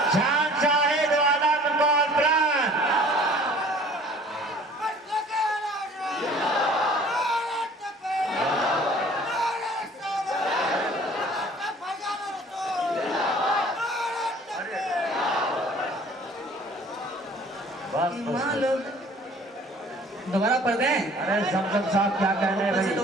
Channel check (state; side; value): normal; both; correlation 0.50